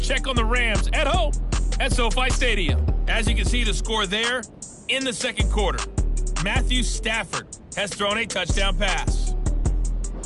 on the Rams at home at SoFi Stadium. As you can see, the score there in the second quarter. Matthew Stafford has thrown a touchdown pass.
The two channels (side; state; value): both; identical; correlation 1.00